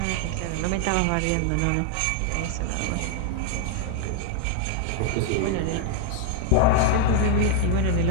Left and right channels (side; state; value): both; different; correlation 0.00